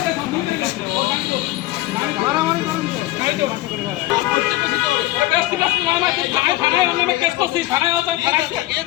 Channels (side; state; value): right; quieter; 17.4 dB